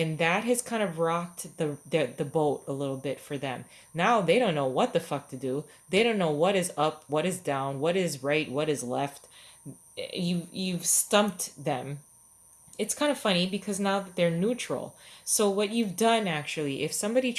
that has kind of rocked the boat a little bit for them. Now they don't know what the fuck to do. They don't know what is up, what is down, what is right, what is left. You've stumped them. It's kind of funny because now that they're neutral. So what you've done, actually, if somebody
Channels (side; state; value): both; identical; correlation 1.00